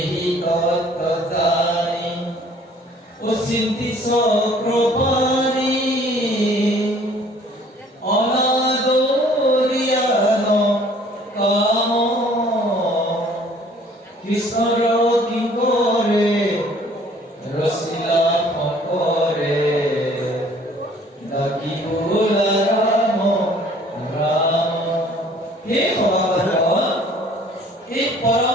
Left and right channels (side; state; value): both; normal; correlation 0.55